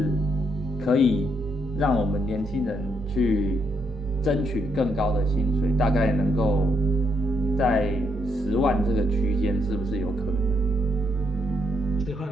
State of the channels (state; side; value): normal; both; correlation 0.76